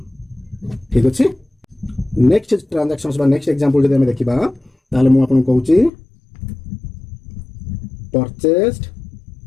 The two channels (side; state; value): right; drops out; at 5.9 s